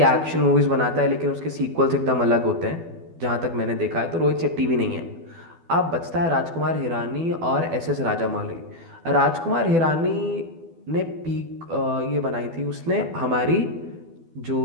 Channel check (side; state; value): left; late; 12 ms